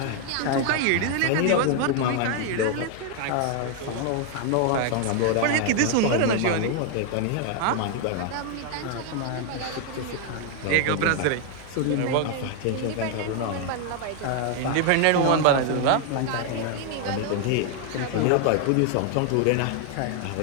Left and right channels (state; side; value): different; both; correlation 0.00